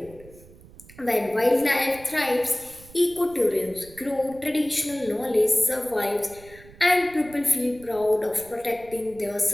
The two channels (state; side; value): noise; right; rumble, 22 dB below the sound